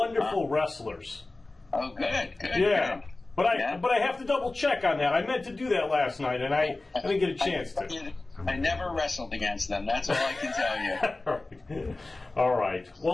wrestlers. Oh, good. Yeah. Good. But I have to double check on that. I meant to do that last night, and I didn't get a chance to. I never wrestled against them. That's all I can tell you. All right.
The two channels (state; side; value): quieter; right; 3.1 dB